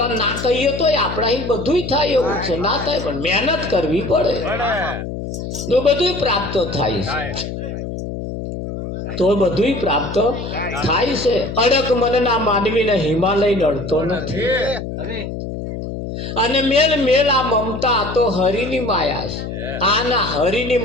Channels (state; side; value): noise; left; hum, 7 dB below the sound